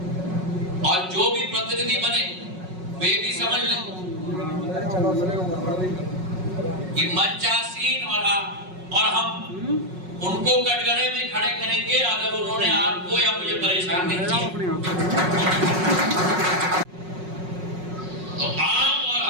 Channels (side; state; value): left; late; 5.4 ms